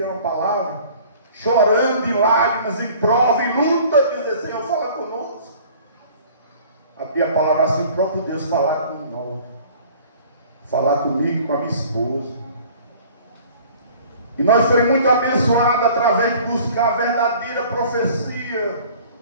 uma palavra, chorando em lágrimas, em prova, em luta, dizer: Senhor, fala conosco. Abria a palavra assim, o próprio Deus falar com nós, falar comigo, com a minha esposa. E nós fomos muito abençoados através de buscar a verdadeira profecia,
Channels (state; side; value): inverted; both; correlation -0.49